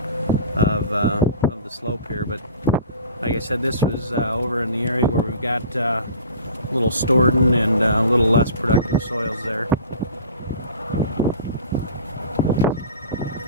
of the slope here. But like I said, this was over in the area where we've got a little Storden and a little less productive soils there.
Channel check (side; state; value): both; inverted; correlation -0.42